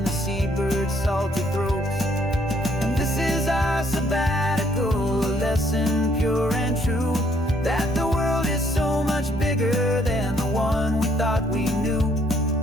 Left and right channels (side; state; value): both; normal; correlation 0.67